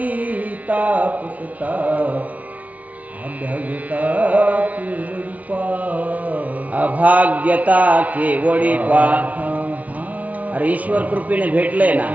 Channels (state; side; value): late; left; 0.070 ms